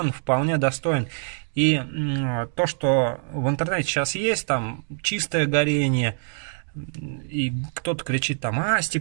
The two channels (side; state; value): left; silent; digital silence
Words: вполне достоин. И то, что в интернете сейчас есть, там чистое горение, и кто-то кричит там,